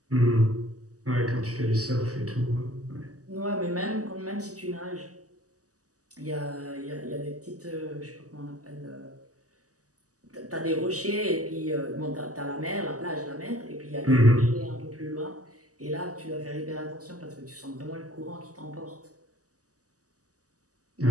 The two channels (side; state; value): left; late; 0.67 ms